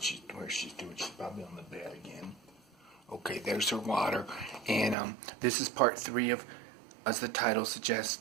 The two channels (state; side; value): drops out; left; at 5.0 s